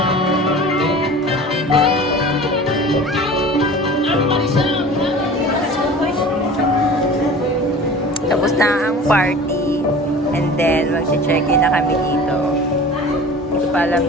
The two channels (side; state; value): both; normal; correlation 0.40